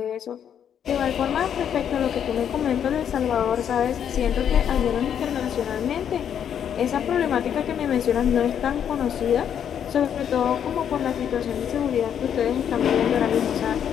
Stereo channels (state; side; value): quieter; right; 8.8 dB